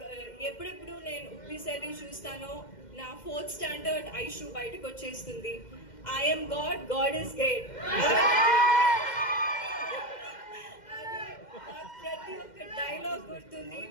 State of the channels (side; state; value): right; late; 2.1 ms